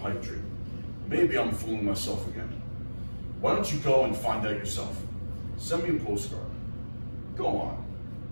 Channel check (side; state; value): both; inverted; correlation -1.00